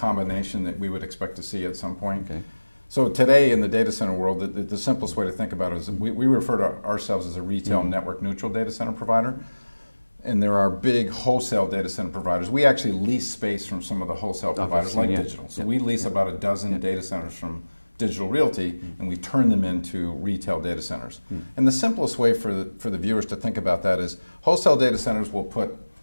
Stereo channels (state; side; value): inverted; both; correlation -1.00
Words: that we would expect to see at some point. Okay. So today in the data center world, the simplest way to think about it is we refer to ourselves as a retail network neutral data center provider, and there are big wholesale data center providers. We actually lease space from some of the wholesale providers like Digital. So we lease about a dozen data centers from Digital Realty, and we turn them into retail data centers. And the simplest way for the viewers to think about that is wholesale data centers will put